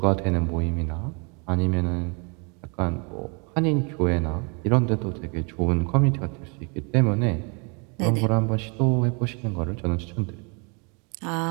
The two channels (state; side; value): quieter; left; 33.9 dB